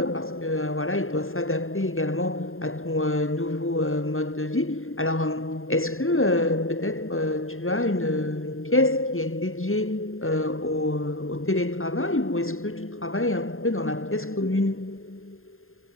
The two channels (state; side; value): late; right; 0.61 ms